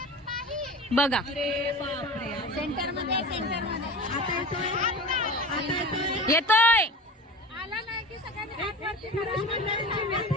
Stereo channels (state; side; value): normal; both; correlation 0.34